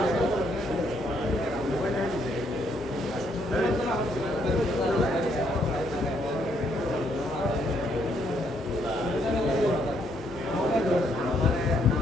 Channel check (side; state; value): both; normal; correlation 0.72